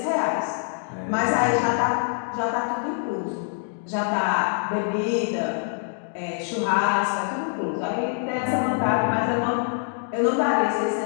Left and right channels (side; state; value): right; silent; 62 dB below the other